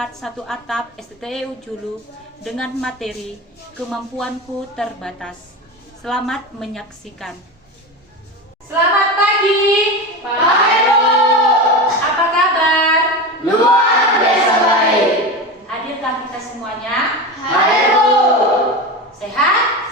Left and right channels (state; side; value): normal; both; correlation 0.24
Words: Atap STTU Julu dengan materi kemampuanku terbatas. Selamat menyaksikan. Selamat pagi, Pak Heru. Apa kabar? Luar biasa baik. Hadirkah kita semuanya? Heru. Sehat?